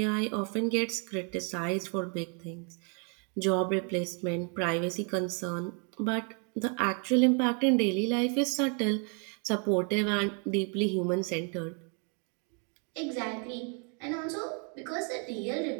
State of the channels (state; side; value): quieter; left; 38.1 dB